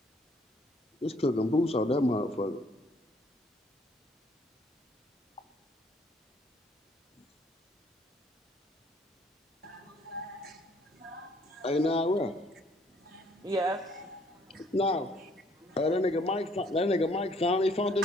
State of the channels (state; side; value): normal; both; correlation 0.63